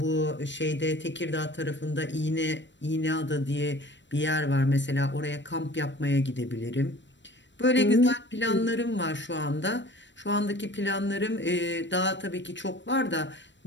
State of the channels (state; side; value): late; right; 0.53 ms